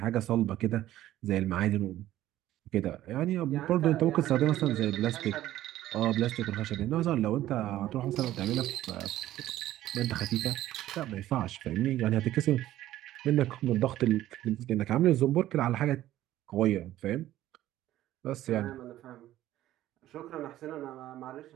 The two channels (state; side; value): quieter; left; 14.0 dB